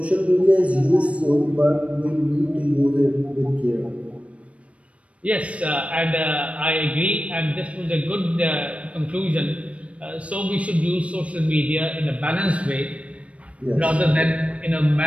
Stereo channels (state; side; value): late; left; 0.063 ms